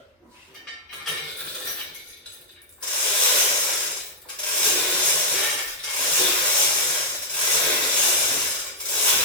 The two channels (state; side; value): normal; both; correlation -0.05